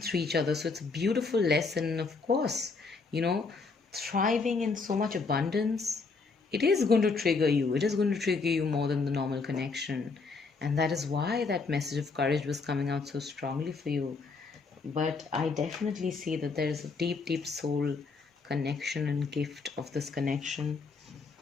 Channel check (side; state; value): right; quieter; 4.4 dB